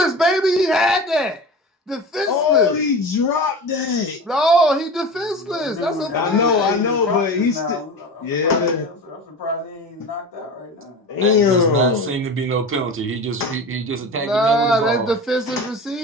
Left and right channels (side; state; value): both; normal; correlation 0.31